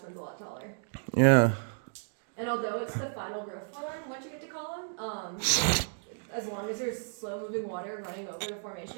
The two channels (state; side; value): silent; left; digital silence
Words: one's a lot taller. Yeah. And although it's the final growth form, once you get to column, as long as there's slow moving water running over the